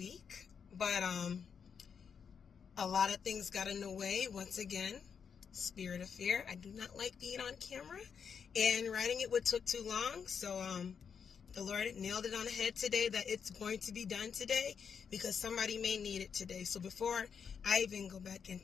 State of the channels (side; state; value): right; quieter; 6.7 dB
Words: but a lot of things got in the way. Once again, spirit of fear. I do not like being on camera, and writing it took too long, so the Lord nailed it on the head today that it's going to be done today because somebody may need it today. So before I even go back